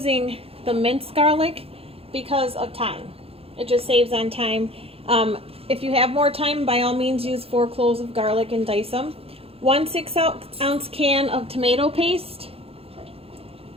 the minced garlic because of time. It just saves on time. If you have more time, by all means use 4 cloves of garlic and dice them. 1 6-ounce can of tomato paste,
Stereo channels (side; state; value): left; late; 0.28 ms